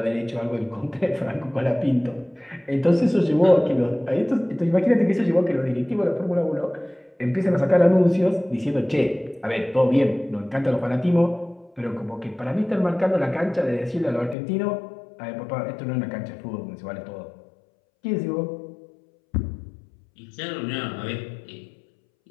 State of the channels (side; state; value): right; drops out; at 14.4 s